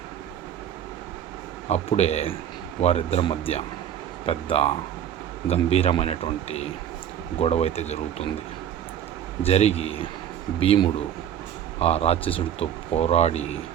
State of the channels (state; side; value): quieter; left; 9.9 dB